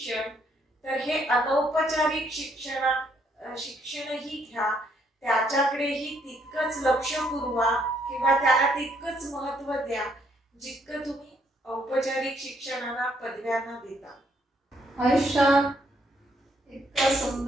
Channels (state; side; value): normal; both; correlation 0.70